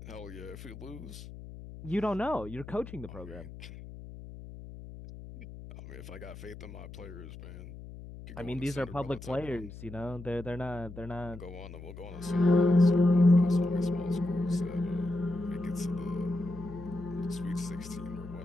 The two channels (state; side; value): noise; left; hum, 13 dB below the sound